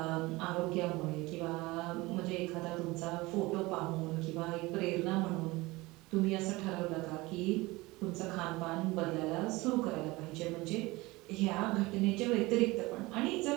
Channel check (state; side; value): quieter; left; 21.6 dB